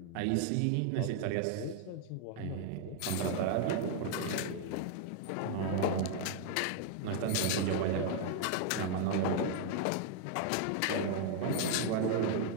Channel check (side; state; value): both; different; correlation 0.00